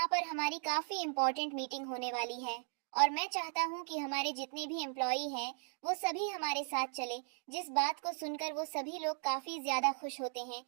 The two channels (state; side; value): silent; left; 53 dB below the other